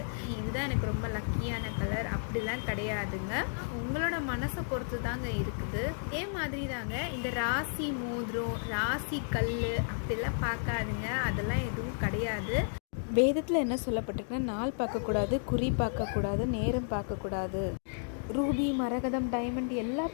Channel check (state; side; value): silent; right; digital silence